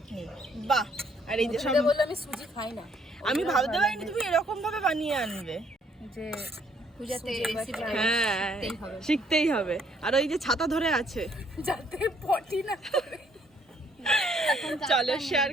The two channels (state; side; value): normal; both; correlation 0.66